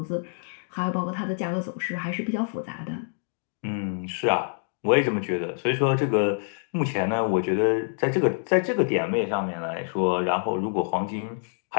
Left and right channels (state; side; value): silent; right; digital silence